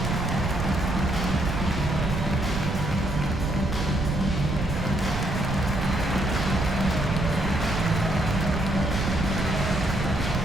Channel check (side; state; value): right; noise; rumble, 3 dB below the sound